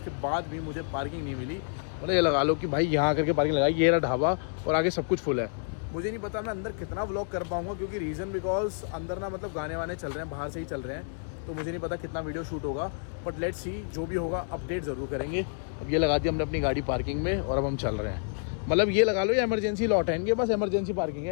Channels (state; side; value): silent; right; digital silence